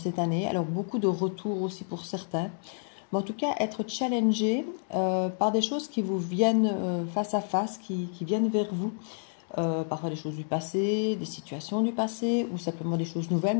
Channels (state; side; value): silent; right; digital silence